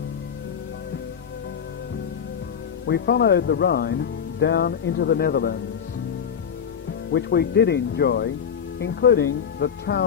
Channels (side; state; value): right; quieter; 7.5 dB